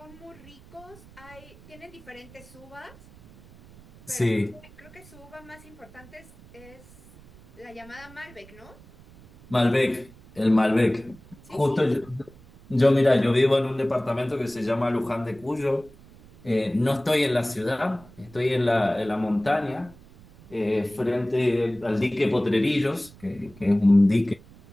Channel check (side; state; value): right; noise; rumble, 23 dB below the sound